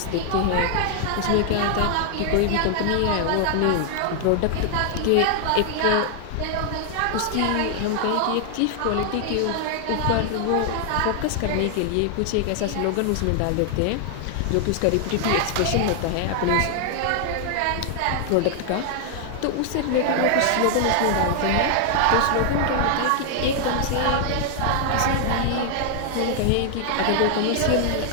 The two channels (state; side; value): different; both; correlation 0.00